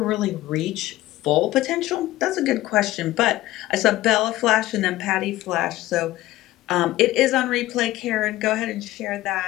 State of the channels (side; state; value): right; quieter; 16.4 dB